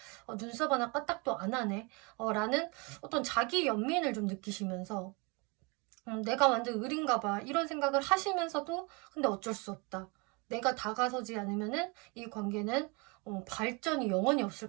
눈썹 하나 까딱도 안 하네. 라는 어떤 자기 연민을 좀 느끼시면서 내가 완전 을인가 봐. 이런 생각을 하시면서도 근데 어쩔 수 없다. 내가 다가서지 않으면은 이 관계는 발전이 영원히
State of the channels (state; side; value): quieter; left; 29.8 dB